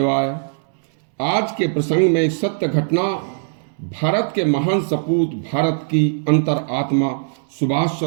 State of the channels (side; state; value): left; silent; 65 dB below the other